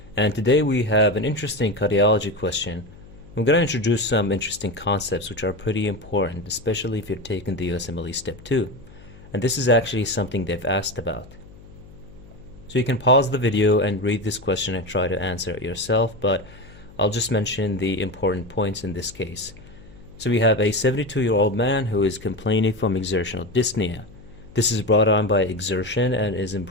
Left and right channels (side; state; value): left; noise; hum, 21 dB below the sound